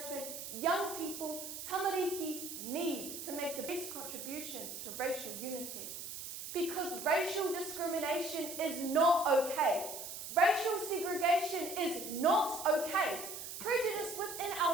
young people, tamariki, need to make the best contribution to racial unity. because racial discrimination is not okay. Racial segregation is not okay. Prejudice within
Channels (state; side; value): noise; right; hiss, 8 dB below the sound